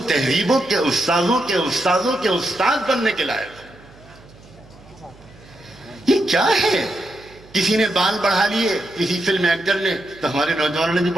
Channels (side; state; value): right; noise; hum, 24 dB below the sound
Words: تہذیبوں کے استاذوں کے استاد بننے کے لائق ہو۔ یہ کیا ہے؟ کسی نے بال بڑھا لیے، کسی فلم ایکٹر نے، تو ہمارے نوجوانوں نے بھی